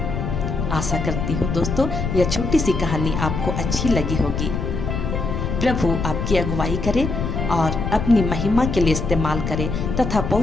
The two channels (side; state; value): left; noise; rumble, 3 dB below the sound